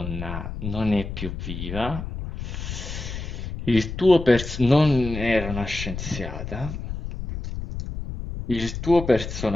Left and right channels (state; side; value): noise; left; rumble, 7 dB below the sound